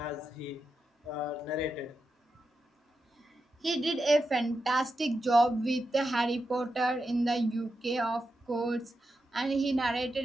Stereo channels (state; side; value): normal; both; correlation 0.88